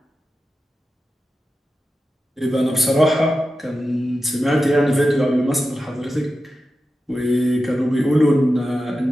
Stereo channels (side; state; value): both; normal; correlation 0.92